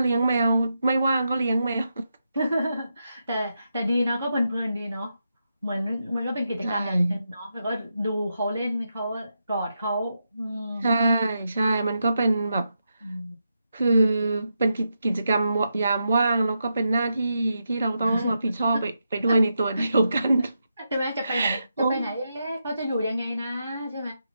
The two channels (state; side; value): inverted; both; correlation -0.85